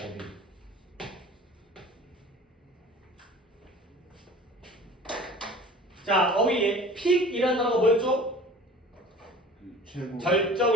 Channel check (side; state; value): both; normal; correlation 0.43